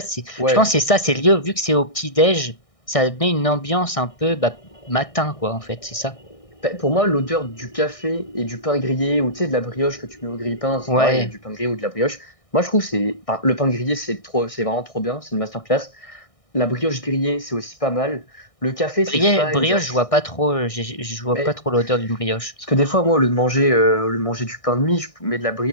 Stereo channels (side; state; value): right; late; 1.6 ms